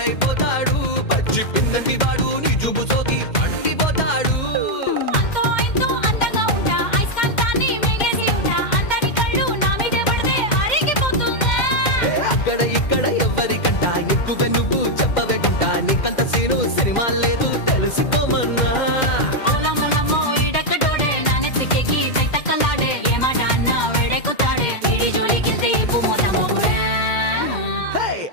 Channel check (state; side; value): late; right; 2.1 ms